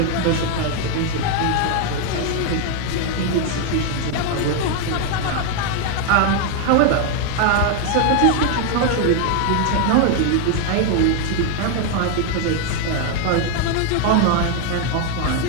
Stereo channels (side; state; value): both; different; correlation 0.01